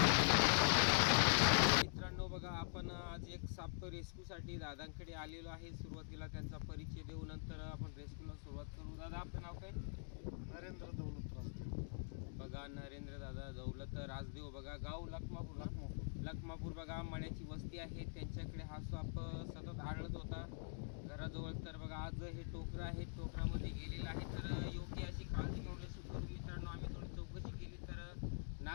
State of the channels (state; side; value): silent; right; digital silence